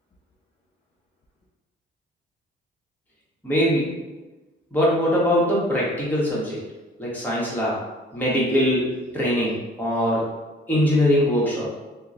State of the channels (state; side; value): normal; both; correlation 0.53